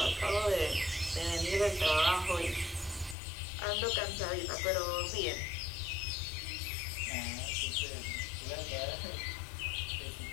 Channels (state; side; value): drops out; right; at 3.2 s